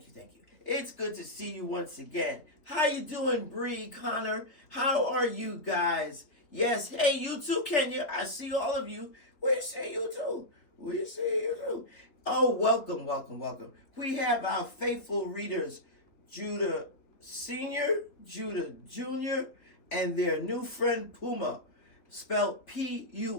It's good to see you once again. How you doing, Bree, Connor? How are you guys? Yes, hey, you too, Kenya. I see all of you. We see you too. Oh, welcome. We have our faithful readers, Judah Sr., Judah Jr., and their new friend Puma, spelled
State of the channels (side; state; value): right; late; 3.1 ms